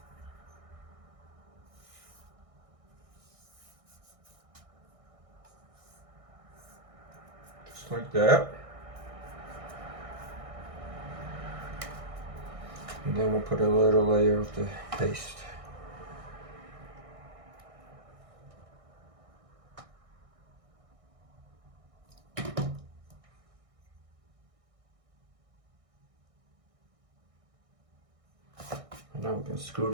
Just like that. And then we'll put a little layer of the paste. And now we're going to screw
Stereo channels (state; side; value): late; left; 1.6 ms